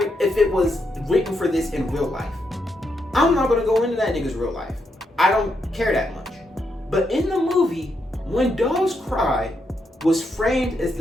if it was written for this in real life. I'm not gonna go into that nigga's real life. I don't care that much. But in the movie, When Doves Cry was framed as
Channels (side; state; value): both; normal; correlation 0.81